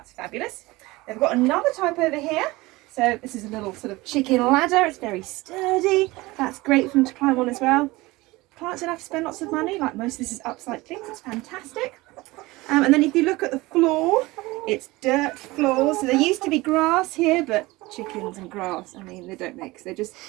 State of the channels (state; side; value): quieter; left; 21.0 dB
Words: fabulous. They've got another type over here. So this is a little sort of chicken ladder. It's very sturdy. That's great for them to climb on as well. Clients don't have to spend lots of money. Like most of this is upcycling. So it's fantastic. And then if you look at the floor, it's dirt floors. So there used to be grass here, but chickens and grass, I mean, they don't mix. They